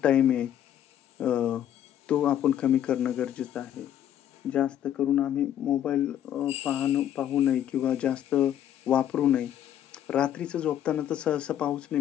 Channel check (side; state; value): right; quieter; 10.7 dB